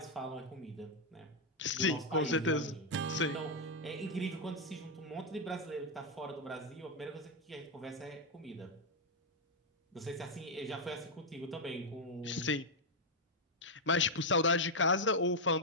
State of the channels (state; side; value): normal; both; correlation 0.00